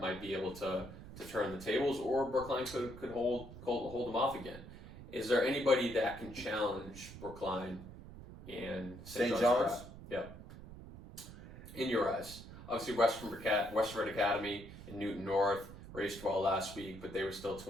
be able to turn the tables, or Brookline could hold them off again. Is there anybody that can challenge Brookline and St. John's? Yeah. In your eyes, obviously Westford Academy in Newton North raced well last week, but they were still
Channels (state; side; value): noise; right; rumble, 14 dB below the sound